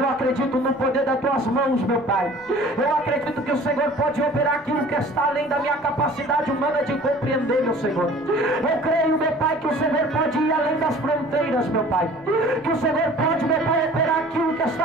acredito no poder das tuas mãos, meu Pai. Eu acredito que o Senhor pode operar aquilo que está além da minha capacidade humana de compreender, meu Senhor. Eu creio, meu Pai, que o Senhor pode ir além das fronteiras, meu Pai. Que o Senhor pode, meu Pai, operar aquilo que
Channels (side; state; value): left; noise; rumble, 28 dB below the sound